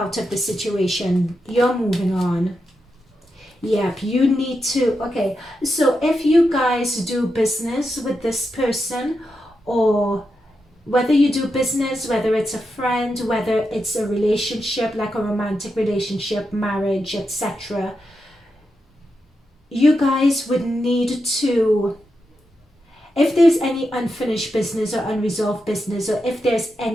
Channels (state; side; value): normal; both; correlation 0.87